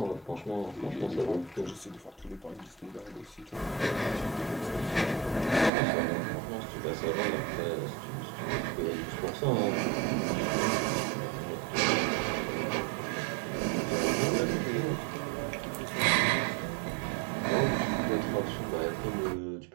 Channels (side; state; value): left; drops out; at 5.7 s